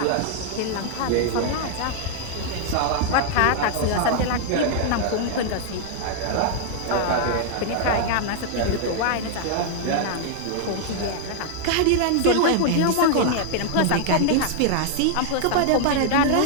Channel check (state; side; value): different; both; correlation 0.00